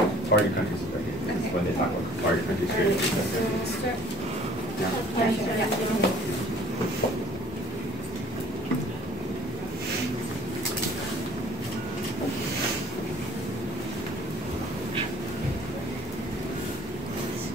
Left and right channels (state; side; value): normal; both; correlation 0.53